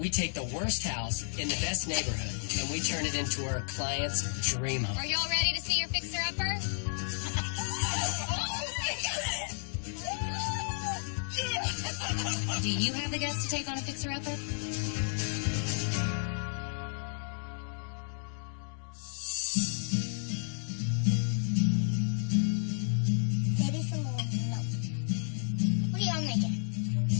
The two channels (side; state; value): right; silent; digital silence